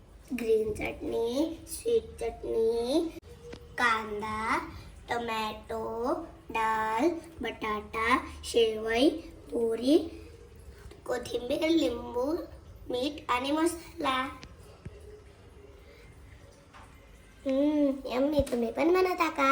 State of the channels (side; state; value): both; identical; correlation 1.00